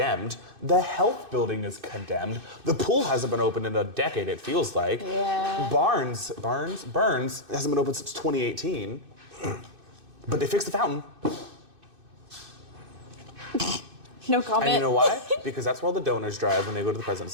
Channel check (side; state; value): left; late; 2.6 ms